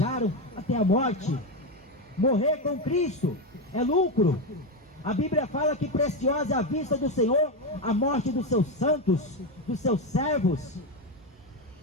até a morte. Morrer com Cristo é lucro. A Bíblia fala que preciosa é a vista do Senhor a morte dos seus santos, dos seus servos.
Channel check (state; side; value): normal; both; correlation 0.11